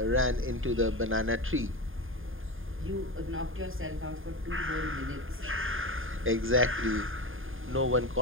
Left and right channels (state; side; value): late; left; 0.59 ms